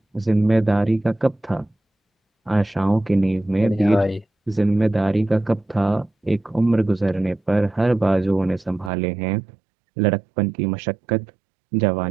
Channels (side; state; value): left; drops out; at 8.9 s